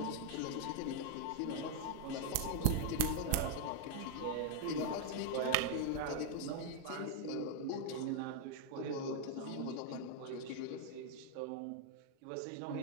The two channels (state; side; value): different; both; correlation 0.00